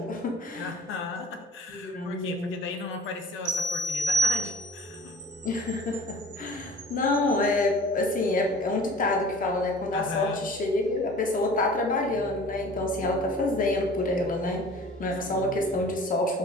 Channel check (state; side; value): normal; both; correlation 0.44